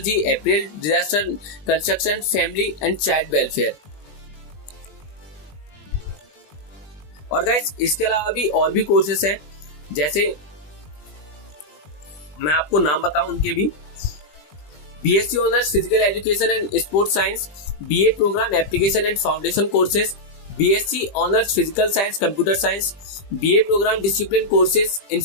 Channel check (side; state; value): right; late; 20 ms